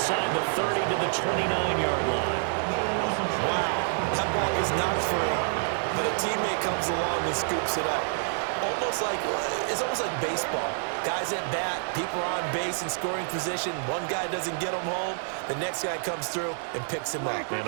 the 30 to the 29-yard line. Wow, that ball is not free, but a teammate comes along and scoops it up. It's almost like baseball. Guys at bat, people are on base in scoring position. One guy doesn't get him home. The next guy comes through and picks him up. And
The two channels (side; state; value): left; silent; digital silence